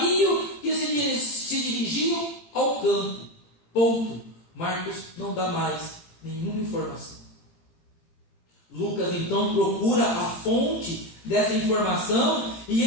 que se dirigiam ao campo. Ponto. Marcos não dá mais nenhuma informação. Lucas então procura a fonte dessa informação e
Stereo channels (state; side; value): late; right; 18 ms